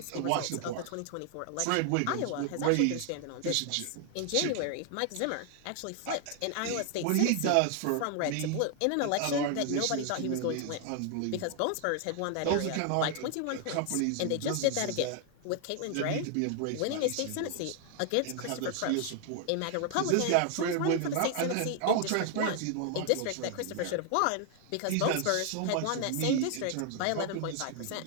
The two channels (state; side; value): different; both; correlation 0.00